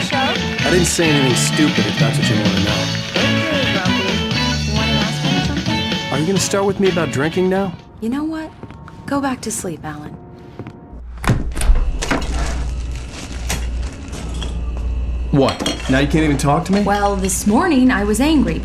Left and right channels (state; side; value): identical; both; correlation 1.00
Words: show? I didn't say anything stupid if that's what you want to know. Okay, Grumpy. You want to ask me something? Are you going to start with me about drinking now? You know what? Go back to sleep, Alan. What? Now you can't even talk to me? Well, this morning I was angry